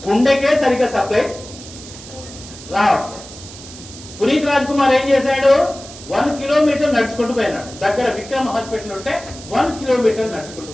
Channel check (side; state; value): right; noise; hiss, 16 dB below the sound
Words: గుండెకే సరిగ్గా సప్లై రావట్లేదు. పునీత్ రాజ్ కుమార్ ఏం చేశాడు? 1 కిలోమీటర్ నడుచుకుంటూ పోయినాడు. దగ్గర విక్రమ్ హాస్పిటల్ ఉంటే 1 కిలోమీటర్ నడుచుకుంటూ